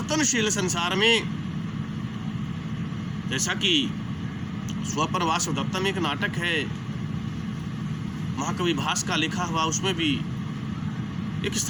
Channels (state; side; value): identical; both; correlation 1.00